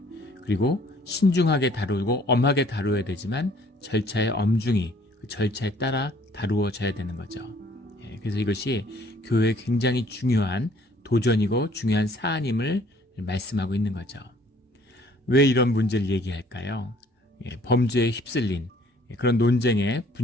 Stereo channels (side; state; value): both; normal; correlation 0.58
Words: 그리고 신중하게 다루고 엄하게 다루어야 되지만 절차에 엄중히 그 절차에 따라 다루어져야 되는 거죠. 그래서 이것이 교회에 굉장히 중요한 도전이고 중요한 사안임을 말씀하고 있는 거죠. 왜 이런 문제를 얘기할까요? 범죄에 휩쓸린 그런 논쟁에